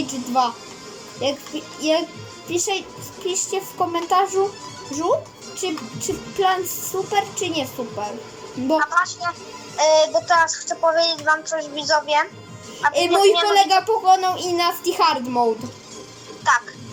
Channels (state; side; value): identical; both; correlation 1.00